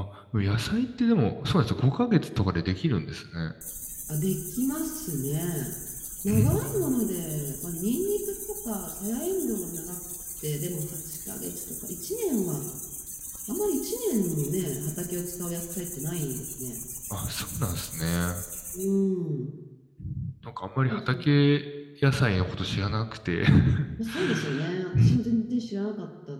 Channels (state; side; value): identical; both; correlation 1.00